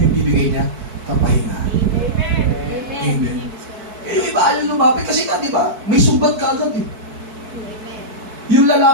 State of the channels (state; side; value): late; left; 4.6 ms